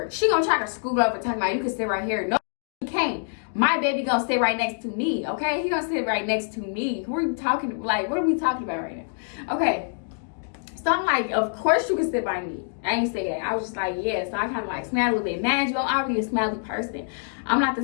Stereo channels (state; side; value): silent; right; digital silence